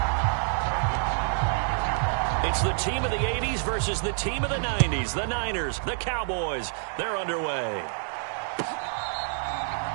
It's the team of the 80s versus the team of the 90s. The Niners, the Cowboys, they're underway.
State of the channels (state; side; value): silent; left; 60 dB below the other